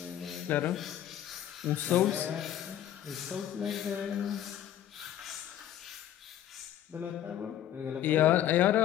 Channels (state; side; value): quieter; right; 11.3 dB